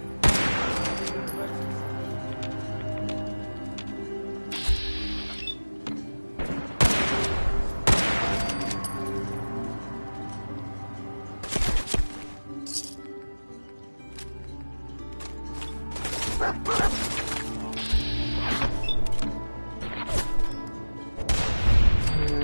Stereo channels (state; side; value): inverted; both; correlation -1.00